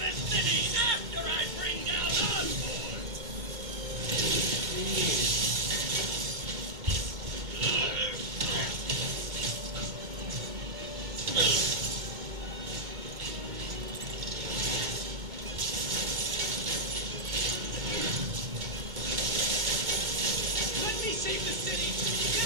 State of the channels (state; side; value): late; left; 2.1 ms